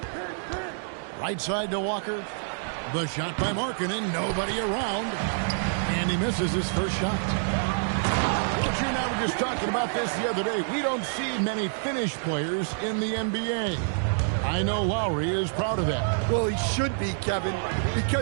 Right side to Walker. The shot by Markkanen. Nobody around. And he misses his first shot. But you and I were just talking about this the other day. We don't see many Finnish players in the NBA. I know Lowry is proud of that. Well, he should be, Kevin,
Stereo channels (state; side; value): silent; left; 60 dB below the other